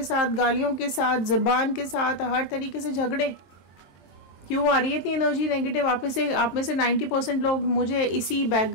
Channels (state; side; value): late; right; 23 ms